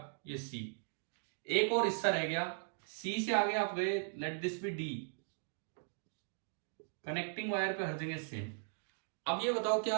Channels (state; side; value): silent; left; digital silence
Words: ये सी। एक और हिस्सा रह गया, सी से आगे आप गए, let this B D. Connecting wire पे हर जगह सेम। अब ये बताओ,